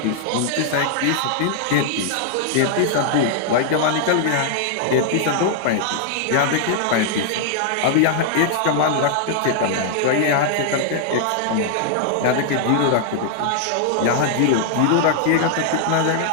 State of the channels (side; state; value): both; different; correlation 0.00